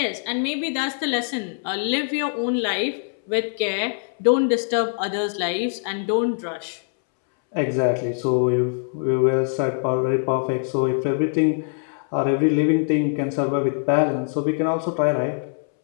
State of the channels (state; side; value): silent; right; 63 dB below the other